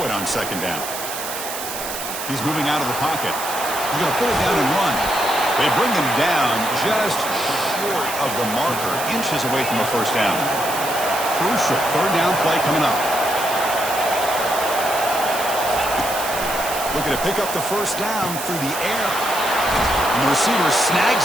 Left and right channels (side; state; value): right; noise; hiss, 7 dB below the sound